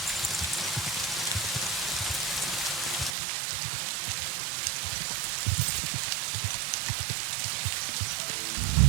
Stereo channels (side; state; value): left; drops out; at 3.2 s